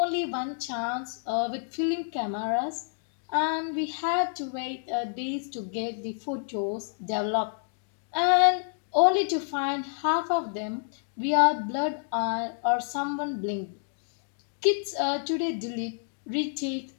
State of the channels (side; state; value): right; silent; digital silence